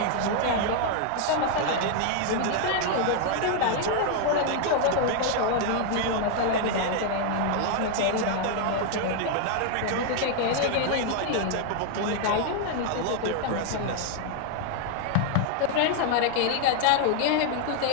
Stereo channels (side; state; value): both; different; correlation 0.00